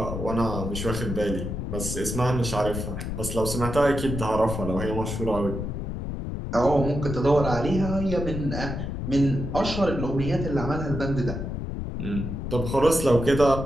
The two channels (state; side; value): noise; left; rumble, 4 dB below the sound